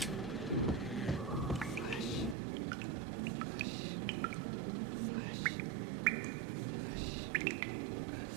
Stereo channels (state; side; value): drops out; left; at 2.4 s